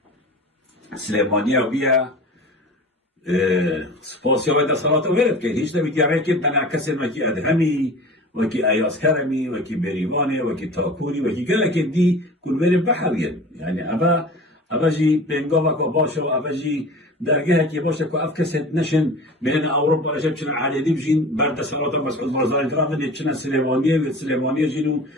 سلیمانیه بیا سپاسی های دستالات رو ورد که هیچ نبید یعنی که تنعکس وکی ادهمی وکی ایاز کرمی وکی بریوانه وکی تاکوری وکی گله که دی کل ورد بحوین یعنی اوه جی بینگا وکا باشه و اوه جی درگه که باشه که اف کسید نشن بین اوروپا رشب چنان علیدی بشین برد سالات مسعود بارزانی کرام دید چنان سلیمانیه و سلیمانیه جینو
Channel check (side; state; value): both; normal; correlation 0.38